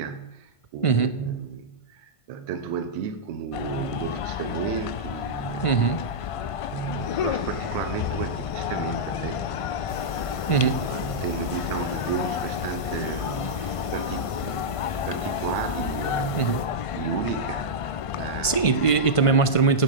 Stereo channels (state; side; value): late; right; 1.5 ms